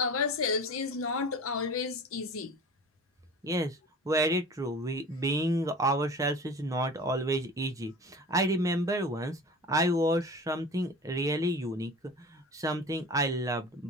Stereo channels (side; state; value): both; normal; correlation 0.37